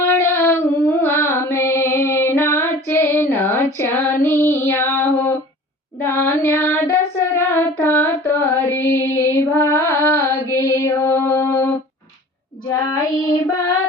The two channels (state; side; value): normal; both; correlation 0.43